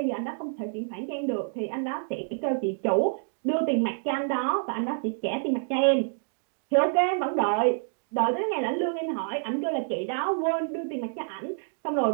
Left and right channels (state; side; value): silent; left; digital silence